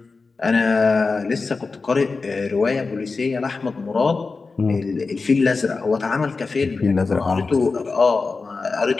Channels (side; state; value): right; quieter; 4.2 dB